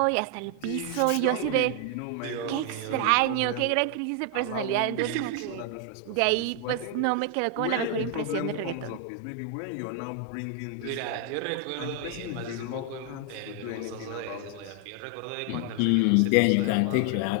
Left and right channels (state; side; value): different; both; correlation 0.00